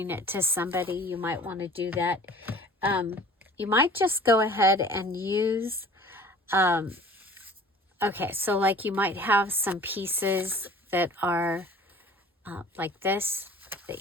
it to somebody, you might want to do that. You might just go ahead and use, okay, so like you might have some pieces that are like this,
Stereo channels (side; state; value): both; normal; correlation 0.47